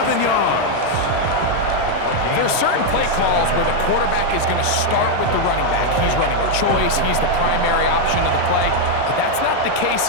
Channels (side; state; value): both; different; correlation 0.00